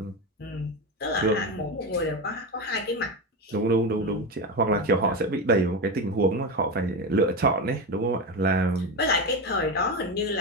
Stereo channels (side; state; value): both; normal; correlation 0.17